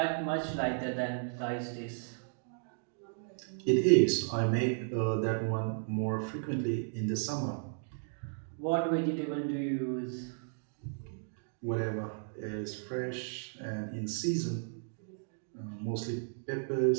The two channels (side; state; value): left; silent; digital silence